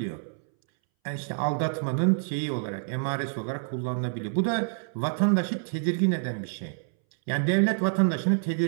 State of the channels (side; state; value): left; silent; 60 dB below the other